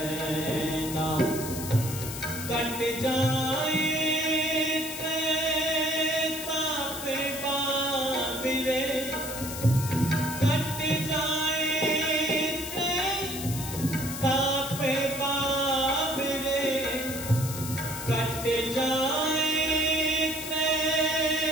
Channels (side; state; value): left; noise; hiss, 8 dB below the sound